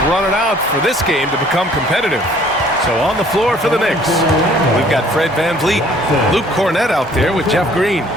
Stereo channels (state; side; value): normal; both; correlation 0.57